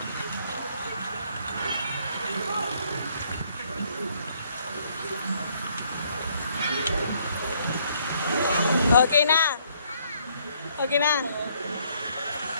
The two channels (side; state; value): both; inverted; correlation -0.67